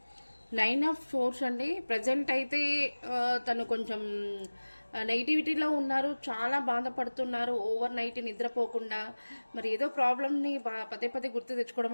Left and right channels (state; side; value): inverted; both; correlation -1.00